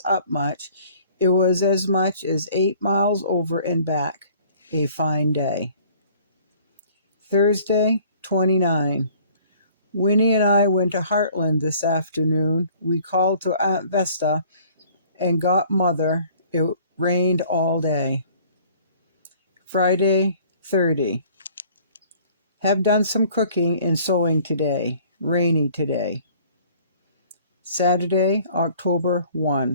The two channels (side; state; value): both; inverted; correlation -0.54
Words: up much. It was as much as 8 miles over and back. A fine day. Thursday, 29. Winnie and I went to Heartland this afternoon. We called to Aunt Vesta and got Mother. It rained all day. Friday, 30. Have done some cooking and sewing today. Rainy today. Saturday, October